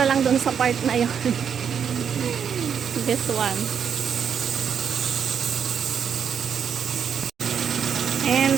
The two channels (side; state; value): left; quieter; 7.5 dB